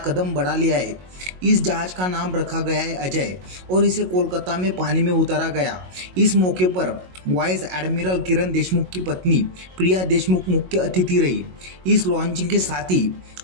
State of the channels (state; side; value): late; left; 22 ms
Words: कदम बढ़ा लिया है। इस जहाज का नाम रखा गया है अजय और इसे कोलकाता में पानी में उतारा गया। इस मौके पर वाइस एडमिरल किरण देशमुख की पत्नी प्रिया देशमुख मुख्य अतिथि रही। इस लॉन्चिंग के साथ ही